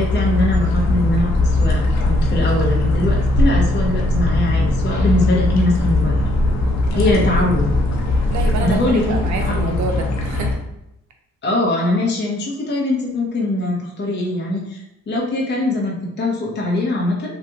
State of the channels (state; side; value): normal; both; correlation 0.68